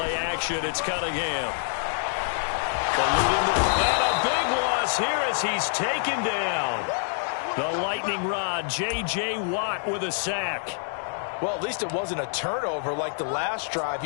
action, it's Cunningham. And a big loss here as he's taken down. The lightning rod, J.J. Watt with a sack. Well, at least it wasn't a turnover like the last drive.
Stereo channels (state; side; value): silent; right; digital silence